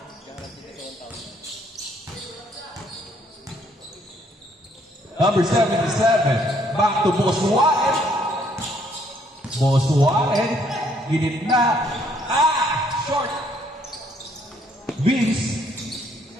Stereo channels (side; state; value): both; normal; correlation 0.67